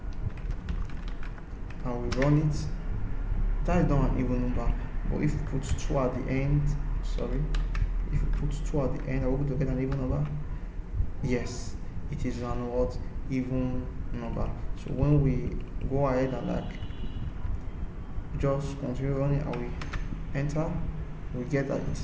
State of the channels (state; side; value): identical; both; correlation 1.00